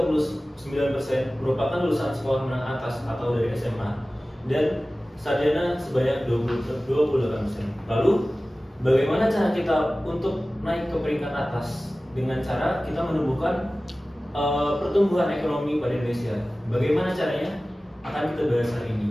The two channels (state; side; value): normal; both; correlation 0.97